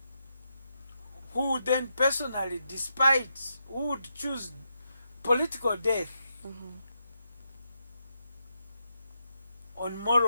who then personally, who would choose political death on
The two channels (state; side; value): inverted; both; correlation -0.83